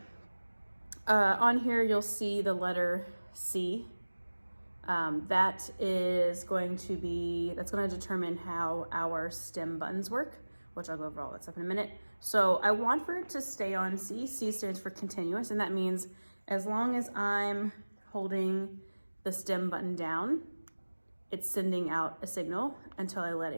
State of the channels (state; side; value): inverted; both; correlation -1.00